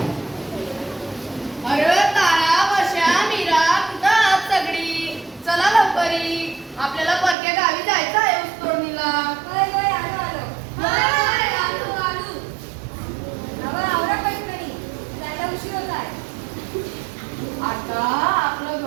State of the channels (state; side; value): drops out; left; at 7.4 s